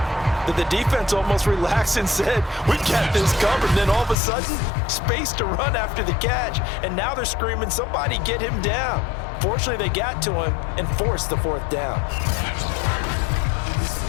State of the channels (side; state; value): right; drops out; at 4.2 s